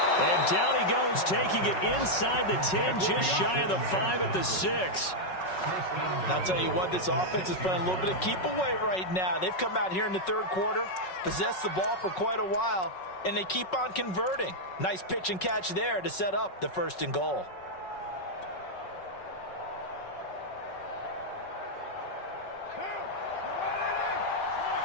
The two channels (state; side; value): late; right; 5.4 ms